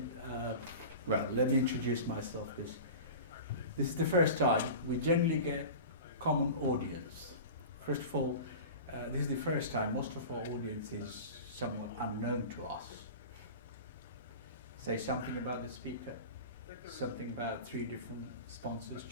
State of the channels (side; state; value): both; inverted; correlation -0.33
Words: Well, let me introduce myself, because this is the first time we generally get common audience. First of all, this is the first time most of our audience is somewhat unknown to us. Say something about the speaker, something about 3 different sponsors